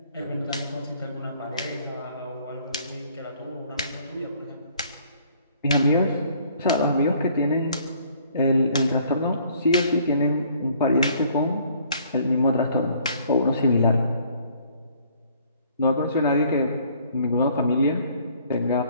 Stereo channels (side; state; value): both; inverted; correlation -0.60